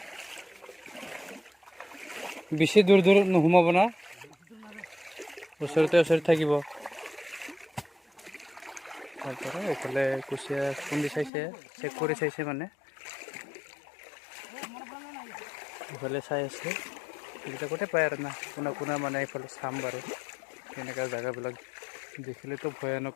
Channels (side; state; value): right; drops out; at 11.3 s